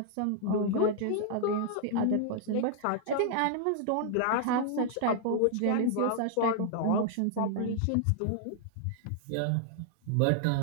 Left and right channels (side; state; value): both; different; correlation -0.01